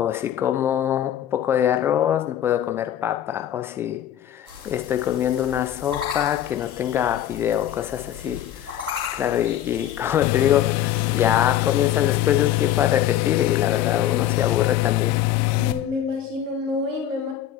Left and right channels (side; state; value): right; quieter; 11.3 dB